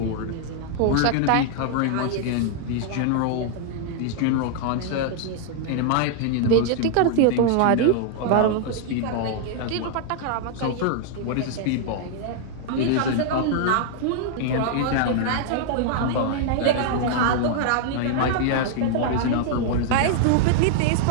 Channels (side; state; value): both; different; correlation 0.00